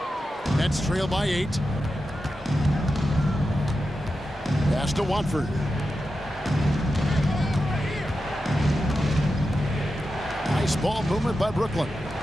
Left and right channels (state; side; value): normal; both; correlation 0.90